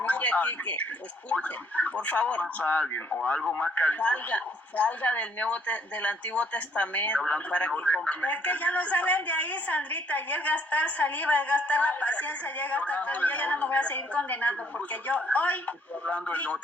Quique, escuchen, por favor. A alguien o algo más que salga del Antiguo Testamento para que comprenda. Es que ya no salen de ahí, Sandrita, y es gastar saliva, es gastar la paciencia, ya gastar todo. Yo ya no me voy a seguir condenando, porque yo hoy... Estoy hablando del Nuevo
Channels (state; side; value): normal; both; correlation 0.65